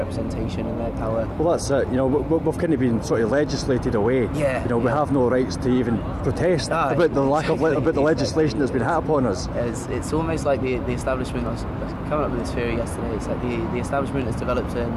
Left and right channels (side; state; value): both; identical; correlation 1.00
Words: and their power. Well, that's it. You know, we've kind of been sort of legislated away. Yeah. You know, we have no rights to even protest about the lack of about the legislation that's been had upon us. It's almost like the establishment. I was coming up with this theory yesterday. It's like the establishment has developed